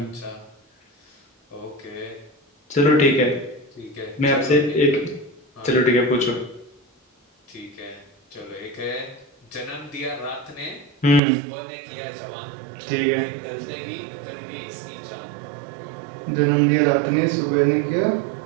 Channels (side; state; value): left; drops out; at 11.2 s